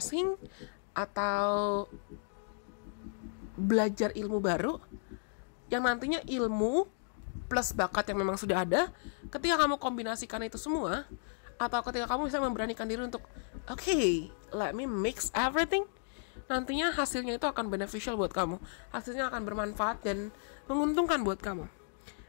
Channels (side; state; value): right; silent; digital silence